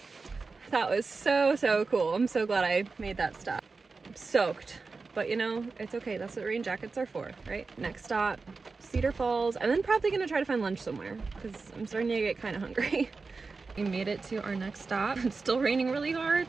That was so cool. I'm so glad I made that stop. I'm soaked, but you know, it's okay. That's what rain jackets are for, right? Next stop, Cedar Falls, and then probably gonna try to find lunch somewhere because I'm starting to get kind of hungry. We made it to our next stop. It's still raining really hard.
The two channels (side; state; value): left; quieter; 4.2 dB